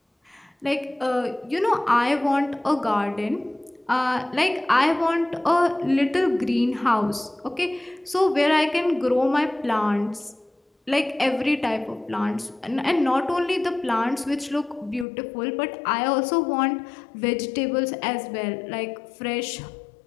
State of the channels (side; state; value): right; drops out; at 15.1 s